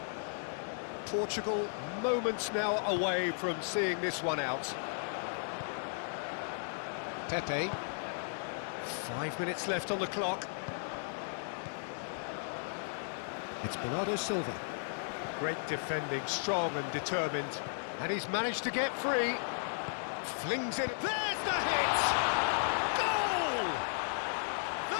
Portugal moments now away from seeing this one out. Pepe. 5 minutes left on the clock. It's Bernardo Silva. Great defending, strong and determined. And he's managed to get free. Flings it. There's the hit! Goal!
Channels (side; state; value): right; silent; digital silence